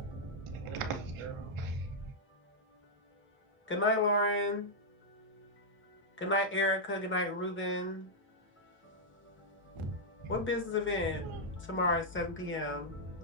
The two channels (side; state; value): both; normal; correlation -0.06